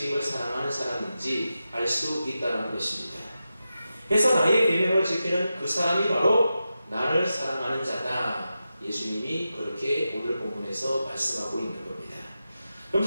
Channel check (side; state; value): both; inverted; correlation -0.91